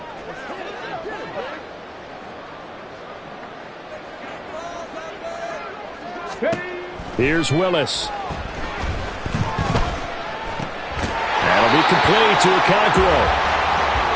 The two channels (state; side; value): identical; both; correlation 1.00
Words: Here's Willis. That'll be complete to